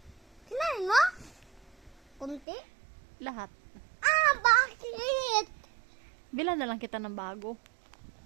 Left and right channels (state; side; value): drops out; left; at 2.4 s